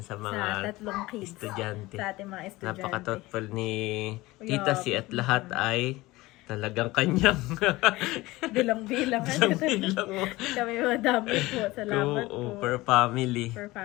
sa mga 3 kids. estudyante. Sa ating mga estudyante. Napaka-thoughtful ni Tita Si at lahat ay talagang kanyang Bilang-bilang. bilang Kami madami po. Salamat po. per family. Per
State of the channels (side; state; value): right; quieter; 19.8 dB